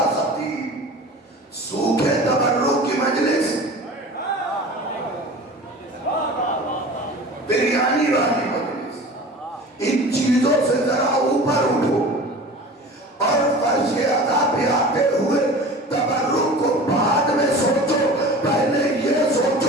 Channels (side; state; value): both; normal; correlation 0.38